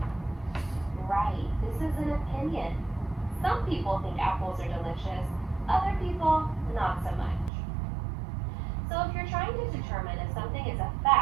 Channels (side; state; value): left; drops out; at 7.5 s